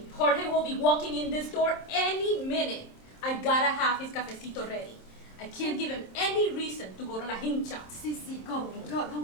Jorge will be walking in this door any minute. I gotta have his cafecito ready. I can't give him any reason to go to La Hincha. Go,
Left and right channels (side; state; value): right; late; 27 ms